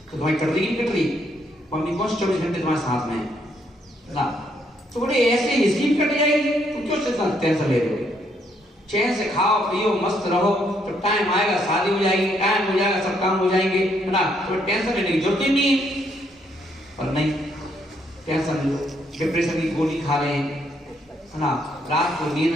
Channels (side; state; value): both; normal; correlation 0.72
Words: तो तुम्हारी कट रही नहीं कट रही? मम्मी कौन 24 घंटे तुम्हारे साथ में है ना। तो बोले ऐसे इसी कट जाएगी, तुम क्यों टेंशन ले रहे हो? चैन से खाओ पियो मस्त रहो, तो टाइम आएगा शादी हो जाएगी, टाइम हो जाएगा सब काम हो जाएंगे, है ना। तो टेंशन लेने की जरूरत ही नहीं है। पर नहीं, टेंशन लो, डिप्रेशन की गोली खा रहे हैं, है ना। रात को